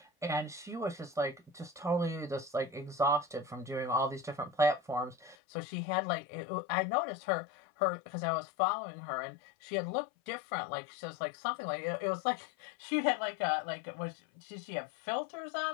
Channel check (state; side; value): drops out; right; at 5.4 s